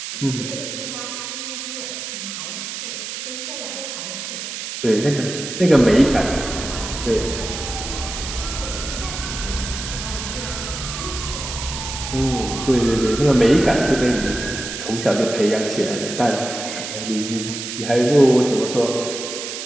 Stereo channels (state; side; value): noise; right; hiss, 7 dB below the sound